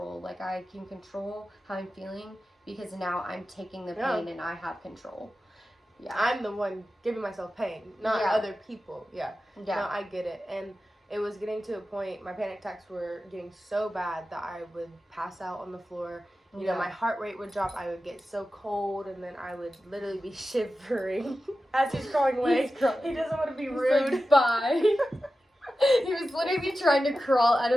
Like, I can control how I'm feeling because now I'm taking the pain and I have control. Yeah. I'm the one giving myself pain, not other people. Yeah. No, I get it. And it was getting to a point, my panic attacks were getting so bad that I would pass out on the floor. You know, my heart rate would drop. I would get so cold, and then I would literally be shivering as he's crawling away. He doesn't want to be rude. Like, bye. He was literally trying to crawl out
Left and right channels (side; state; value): both; normal; correlation 0.93